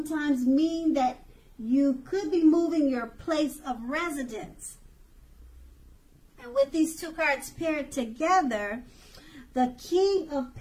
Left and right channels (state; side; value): identical; both; correlation 1.00